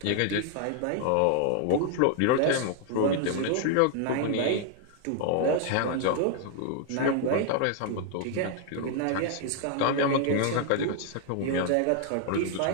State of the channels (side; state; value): both; different; correlation 0.00